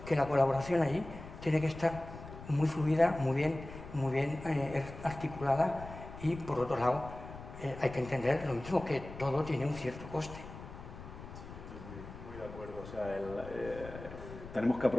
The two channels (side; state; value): left; noise; rumble, 13 dB below the sound